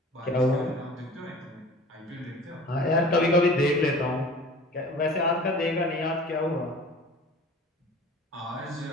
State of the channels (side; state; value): both; normal; correlation 0.43